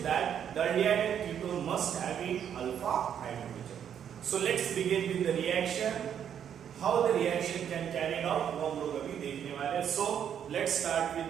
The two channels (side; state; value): left; quieter; 8.9 dB